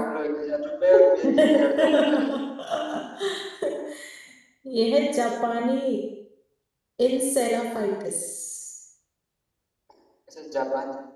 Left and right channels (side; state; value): both; identical; correlation 1.00